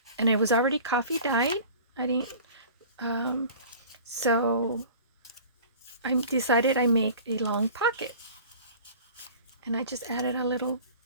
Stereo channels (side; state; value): both; inverted; correlation -0.43